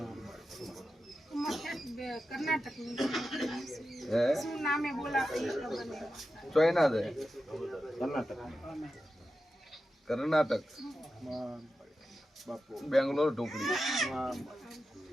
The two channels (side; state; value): both; normal; correlation 0.91